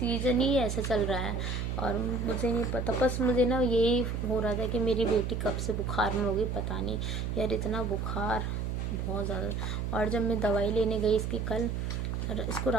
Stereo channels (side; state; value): right; noise; hum, 2 dB below the sound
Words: ही ऐसा चल रहा है और मुझे नहीं पता। बस मुझे ना यही हो रहा था कि मेरी बेटी कब से बुखार में होगी पता नहीं यार, इतना बुखार बहुत ज़्यादा। और जब मैं दवाई लेने गई इसकी कल, इसको